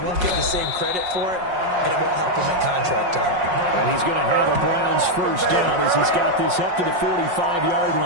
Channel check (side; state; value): left; late; 5.5 ms